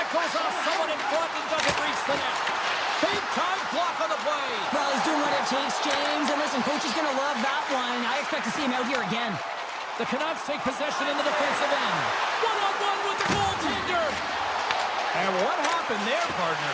goes off someone in front and doesn't reach the net. Big time block on the play. Well, he's doing what it takes, James. And listen, coach is going to love that one. I expect to see him out here again. The Canucks take possession in the defensive end. One-on-one with the goaltender. And what happened there, partner?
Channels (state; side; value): identical; both; correlation 1.00